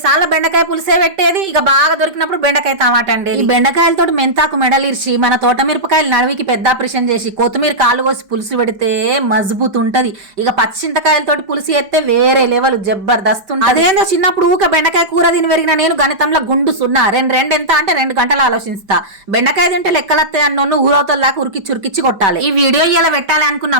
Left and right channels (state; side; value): late; left; 5.2 ms